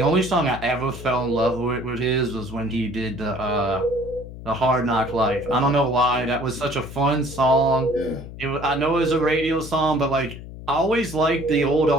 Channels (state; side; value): noise; left; hum, 13 dB below the sound